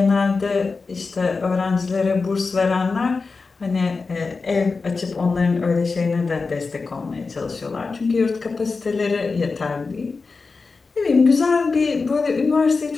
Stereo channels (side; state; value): right; quieter; 4.3 dB